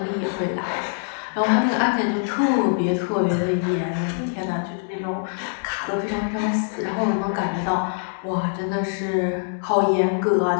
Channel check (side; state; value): right; silent; digital silence